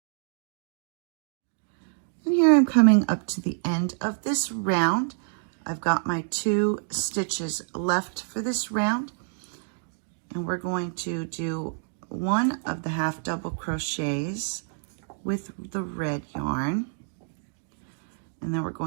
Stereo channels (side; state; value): left; silent; digital silence